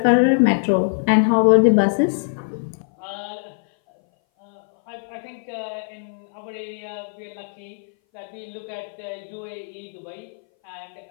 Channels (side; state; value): right; silent; 59 dB below the other